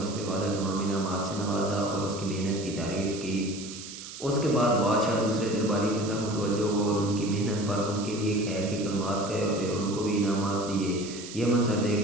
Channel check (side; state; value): right; noise; hiss, 12 dB below the sound